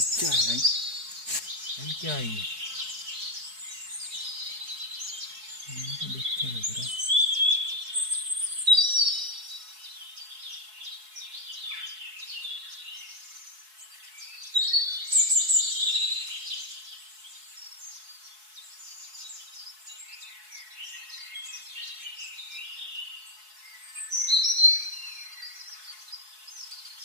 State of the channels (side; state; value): left; late; 4.7 ms